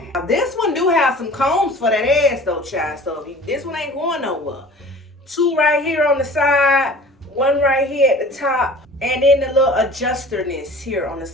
Now, this one do have some combs for that ass though, child. So this one ain't going nowhere. 2 right here on the side, 1 right here at the top, and then the little adjusterness here on the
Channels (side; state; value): both; normal; correlation 0.44